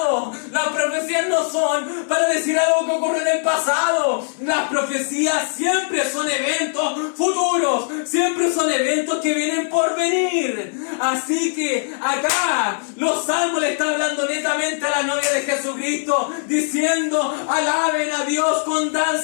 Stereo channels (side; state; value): right; silent; digital silence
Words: Las profecías no son para decir algo que ocurrió en el pasado. Las profecías siempre son eventos futuros, siempre son eventos que vienen por venir. Así que acá los Salmos le están hablando netamente a la novia de Jesucristo, diciendo, alaben a Dios con